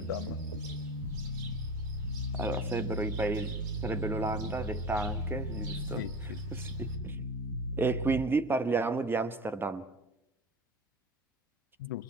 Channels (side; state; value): both; normal; correlation 0.32